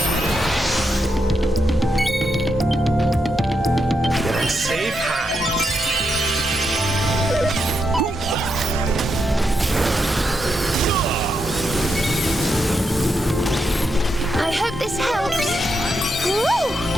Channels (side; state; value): both; normal; correlation 0.82